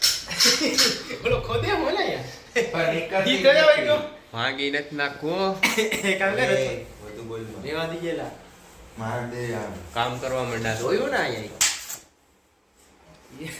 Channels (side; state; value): both; identical; correlation 1.00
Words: બોલો ખોદે બોલે યાર પણ એક દી કયો હોય ગયો ભાગી નથી નાખો કામ કરે બધું બોલમાં રેવા દી ગયેલા માર દે આમ કામ કરવા માંડ્યા જોયું ને અહીંયા